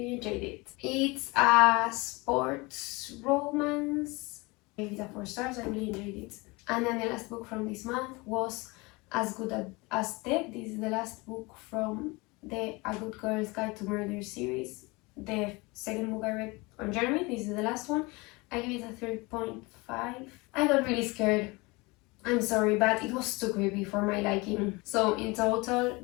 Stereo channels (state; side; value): quieter; right; 25.0 dB